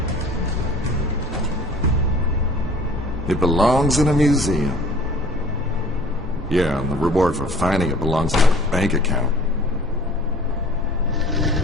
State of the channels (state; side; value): normal; both; correlation 0.49